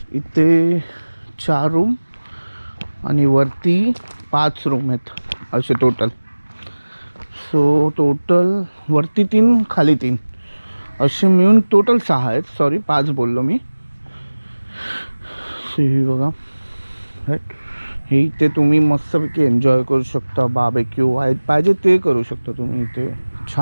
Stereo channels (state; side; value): inverted; both; correlation -1.00